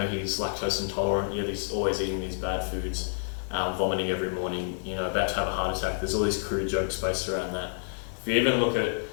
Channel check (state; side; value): silent; right; digital silence